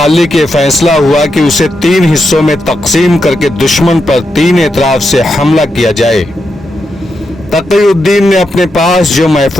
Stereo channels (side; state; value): both; normal; correlation 0.85